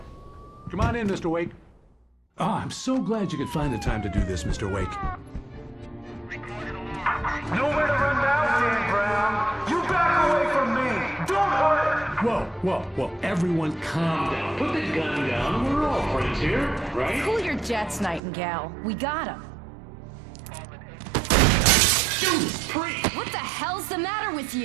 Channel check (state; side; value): drops out; left; at 18.2 s